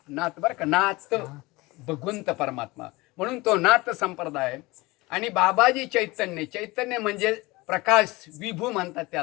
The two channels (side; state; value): right; quieter; 22.2 dB